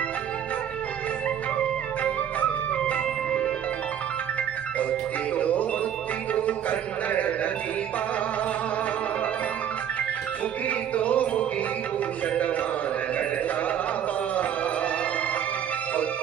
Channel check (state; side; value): quieter; left; 9.4 dB